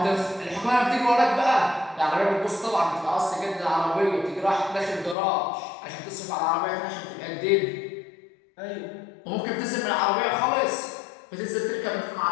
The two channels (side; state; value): right; drops out; at 5.2 s